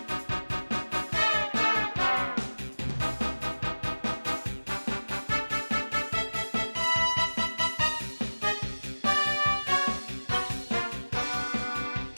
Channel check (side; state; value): both; inverted; correlation -1.00